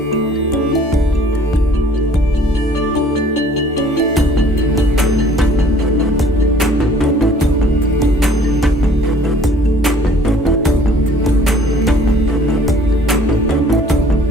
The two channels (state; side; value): normal; both; correlation 0.54